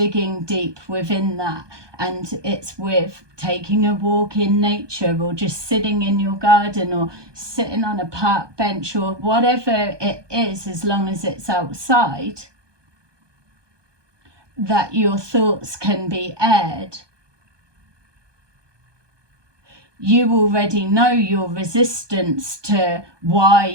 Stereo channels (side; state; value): left; late; 1.2 ms